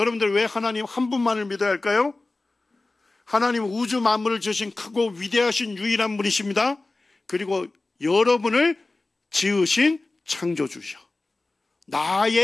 왜 하나님 한 분만을 믿어야 할까요? 하나님은 우주 만물을 지으신 크고 위대하신 유일한 분이십니다. 그리고 여러분을 지으신 창조주셔.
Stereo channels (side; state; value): right; quieter; 3.2 dB